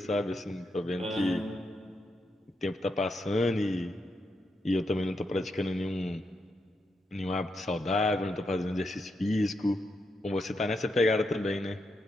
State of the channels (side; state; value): both; normal; correlation 0.83